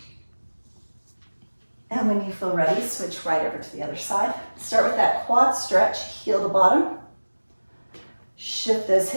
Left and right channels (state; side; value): inverted; both; correlation -1.00